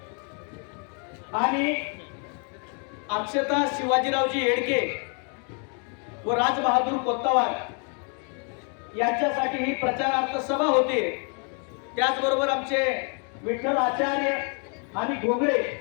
आणि अक्षता शिवाजीरावजी येडके व राजबहादूर कोत्तावार यांच्यासाठी ही प्रचारार्थ सभा होते। त्याचबरोबर आमचे विठ्ठल आचार्य आणि घोगळे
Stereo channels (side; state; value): right; quieter; 39.2 dB